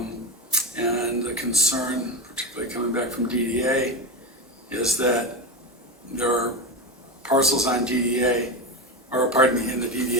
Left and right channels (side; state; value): both; normal; correlation 0.19